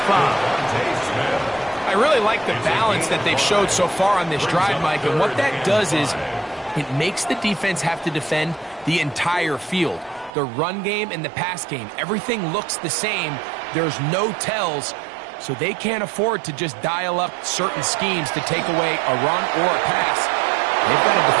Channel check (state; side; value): drops out; left; at 10.3 s